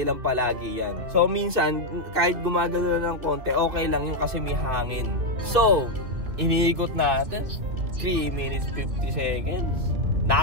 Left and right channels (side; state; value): left; late; 2.9 ms